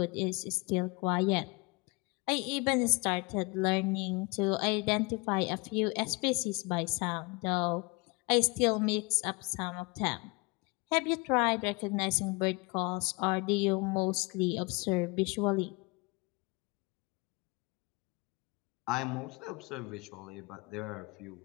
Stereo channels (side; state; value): right; quieter; 28.0 dB